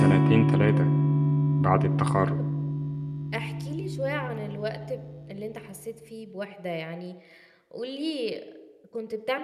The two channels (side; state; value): both; identical; correlation 1.00